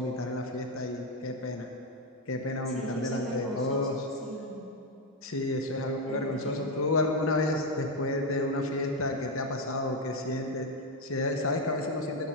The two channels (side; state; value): both; normal; correlation 0.06